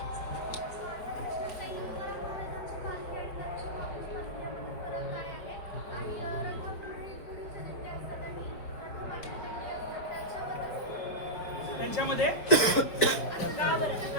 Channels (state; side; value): late; right; 5.0 ms